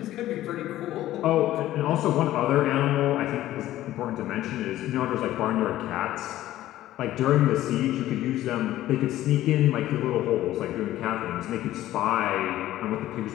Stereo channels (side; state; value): right; quieter; 14.3 dB